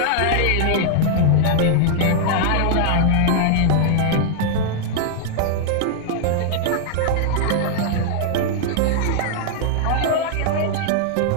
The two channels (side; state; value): both; different; correlation -0.01